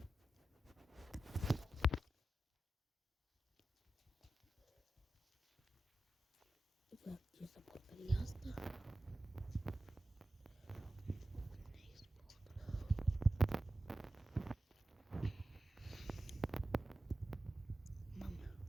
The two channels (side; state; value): both; normal; correlation 0.93